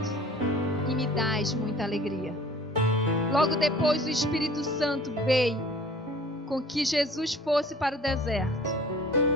e me dás muita alegria. Logo depois o Espírito Santo veio com que Jesus fosse para o deserto.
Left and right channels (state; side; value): normal; both; correlation 0.48